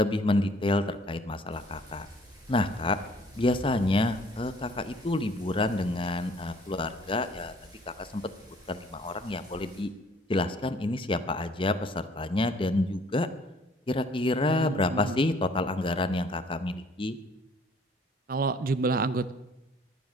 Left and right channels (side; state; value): both; normal; correlation 0.58